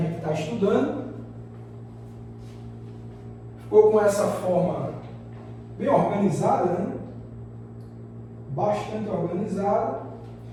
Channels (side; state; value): both; identical; correlation 1.00